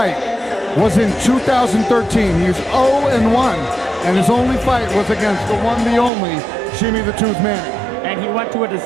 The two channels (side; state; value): left; drops out; at 6.1 s